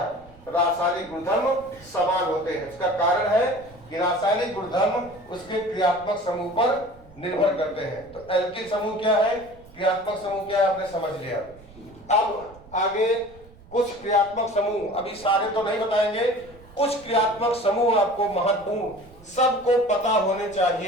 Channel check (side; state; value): right; noise; rumble, 23 dB below the sound